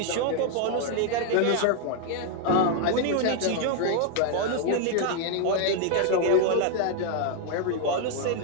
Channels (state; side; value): different; both; correlation 0.00